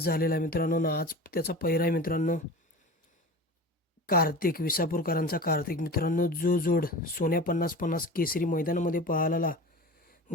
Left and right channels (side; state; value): both; normal; correlation 0.34